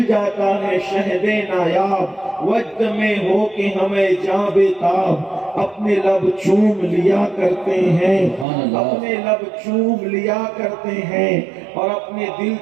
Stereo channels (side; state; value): left; drops out; at 8.5 s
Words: جاتا ہے شہد نایاب، وجد میں ہو کہ ہمیں جاں بے تاب اپنے لب چوم لیا کرتے ہیں، اپنے لب چوم لیا کرتے ہیں، اور اپنے دل